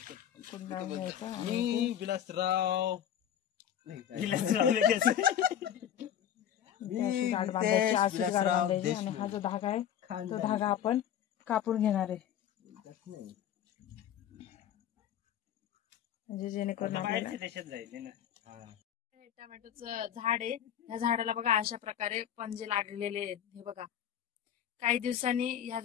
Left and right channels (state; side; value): quieter; right; 10.0 dB